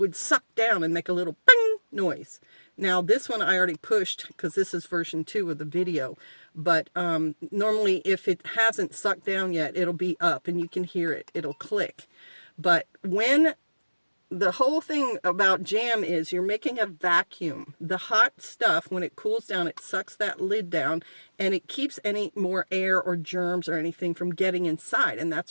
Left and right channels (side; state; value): both; inverted; correlation -1.00